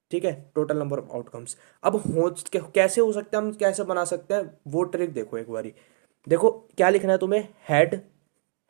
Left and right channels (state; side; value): silent; left; 57 dB below the other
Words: ठीक है, टोटल नंबर ऑफ आउटकम्स। अब हो कैसे हो सकता है, हम कैसे बना सकते हैं वो ट्रिक देखो एक बारी। देखो क्या लिखना है तुम्हें, हेड